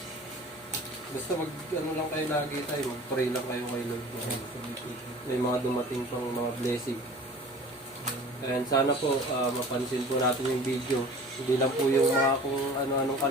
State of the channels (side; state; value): both; normal; correlation 0.43